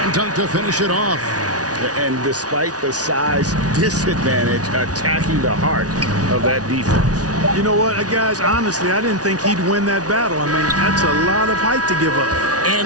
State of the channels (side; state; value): left; late; 0.68 ms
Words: dunk to finish it off. And despite the size disadvantage, attacking the heart of that defense. You know what, guys, honestly, I didn't think he'd win that battle. I mean, that's a lot of height to give up.